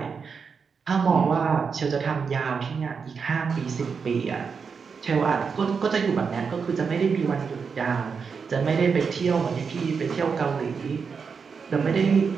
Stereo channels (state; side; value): quieter; left; 5.7 dB